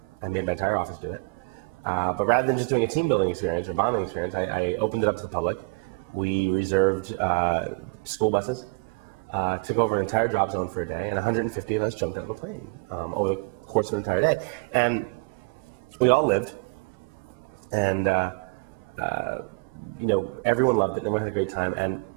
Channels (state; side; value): quieter; left; 30.8 dB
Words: made my entire office do it. But rather than just doing a team building experience or bonding experience, I opened it up to the public. We reserved school buses, took over an entire drop zone for a day, and 150 of us jumped out of a plane over the course of an entire day. And we all lived, and everyone loved it, everyone had a great time, and